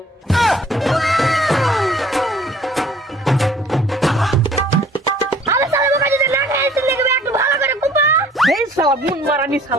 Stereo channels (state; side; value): normal; both; correlation 0.55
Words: আরে শালা বোকা যদি না খাইছিস দেখবে একটু ভালো করে কুপা এই শালা মুন মারানি